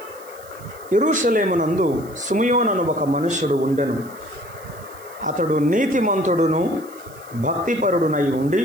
యెరూషలేమునందు సిమియోను అను ఒక మనుష్యుడు ఉండెను. అతడు నీతిమంతుడును భక్తిపరుడునై ఉండి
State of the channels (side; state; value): right; noise; hiss, 23 dB below the sound